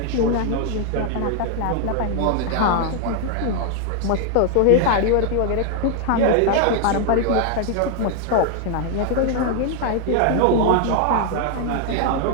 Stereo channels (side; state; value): both; different; correlation 0.00